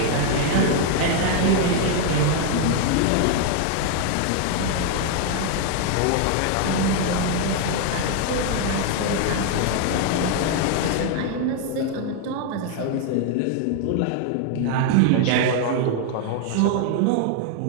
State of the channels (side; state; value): both; different; correlation 0.00